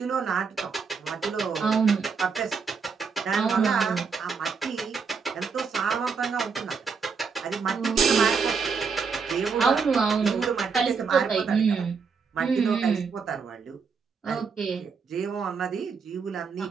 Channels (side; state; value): left; quieter; 5.5 dB